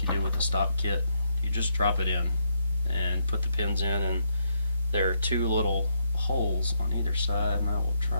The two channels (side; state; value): both; inverted; correlation -0.76